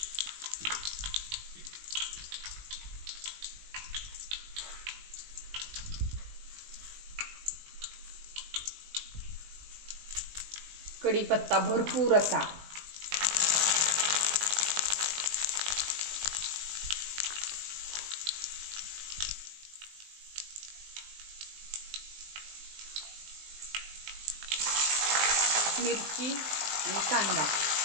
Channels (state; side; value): late; left; 19 ms